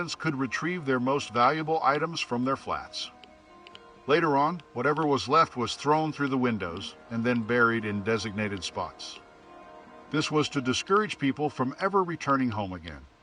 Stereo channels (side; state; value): both; identical; correlation 1.00